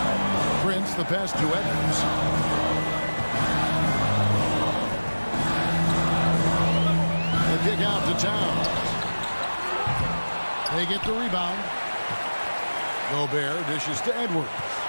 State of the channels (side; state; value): both; inverted; correlation -1.00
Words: Prince, the pass to Edwards. The kick out to Towns. They get the rebound. Gobert dishes to Edwards.